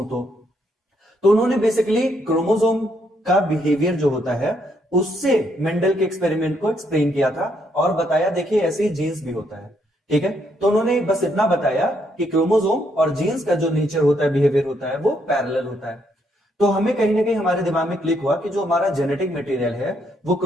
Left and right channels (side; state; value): both; normal; correlation 0.74